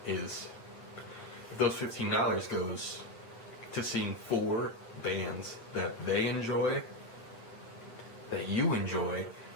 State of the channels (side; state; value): right; late; 8.8 ms